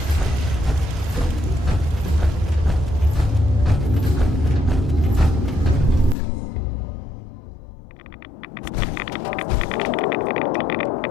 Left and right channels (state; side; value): drops out; right; at 6.2 s